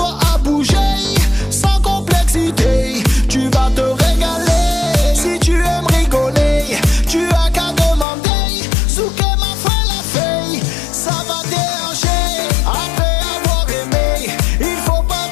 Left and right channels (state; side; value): drops out; right; at 8.1 s